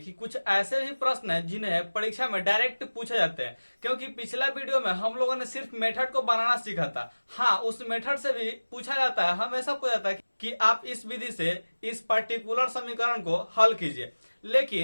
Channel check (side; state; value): both; inverted; correlation -1.00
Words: कुछ ऐसे भी प्रश्न हैं जिन्हें परीक्षा में डायरेक्ट पूछे जाते हैं, क्योंकि पिछला वीडियो में हम लोगों ने सिर्फ मेथड को बनाना सीखा था। हाँ, उस मेथड से भी पूछा जाता है, हमेशा पूछा जाता है कि आप इस विधि से इस पर्टिकुलर समीकरण को हल कीजिए।